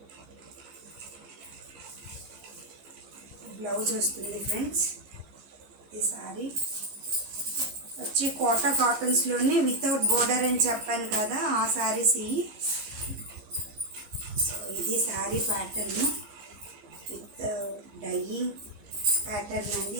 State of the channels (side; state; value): left; late; 15 ms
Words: బ్లౌజ్ వస్తుంది ఫ్రెండ్స్. ఈ శారీ వచ్చి కోటా కాటన్స్లోనే వితౌట్ బోర్డర్ అని చెప్పాను కదా, ఆ శారీస్ ఇవి. సో ఇది sari pattern with dyeing pattern అండి.